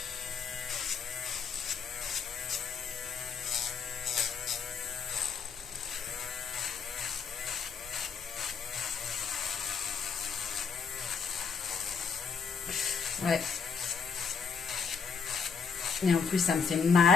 Ouais. Et en plus, ça me fait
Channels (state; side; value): quieter; right; 5.9 dB